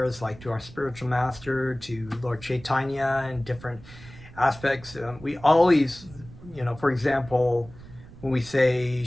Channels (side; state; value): right; noise; rumble, 19 dB below the sound